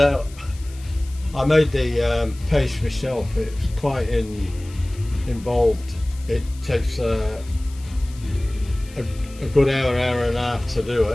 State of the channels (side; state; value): left; noise; hiss, 22 dB below the sound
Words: I made the paste myself. It's quite involved. It takes a good hour and a half to do